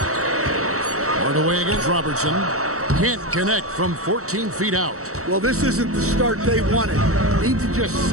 Hardaway against Robertson. Can't connect from 14 feet out. Well, this isn't the start they wanted. Need to just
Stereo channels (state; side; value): late; left; 0.64 ms